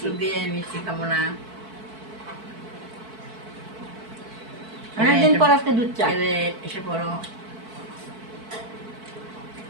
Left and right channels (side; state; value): left; late; 4.5 ms